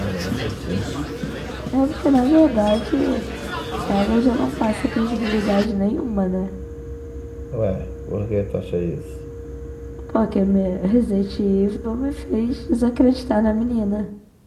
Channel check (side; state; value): both; identical; correlation 1.00